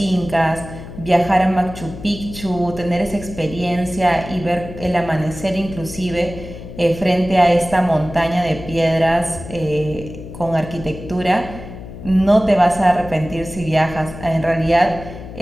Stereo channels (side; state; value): left; noise; hum, 13 dB below the sound